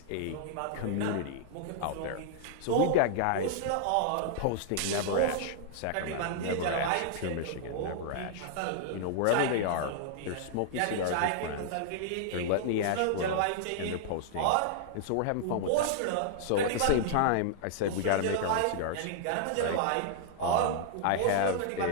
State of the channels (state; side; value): different; both; correlation -0.01